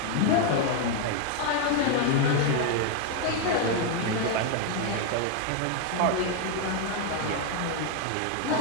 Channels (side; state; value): both; different; correlation 0.01